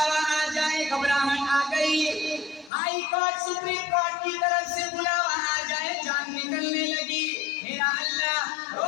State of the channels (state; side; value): drops out; right; at 2.7 s